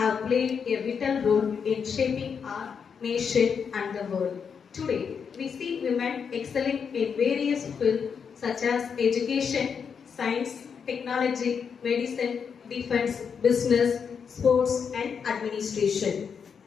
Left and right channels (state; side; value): quieter; right; 6.5 dB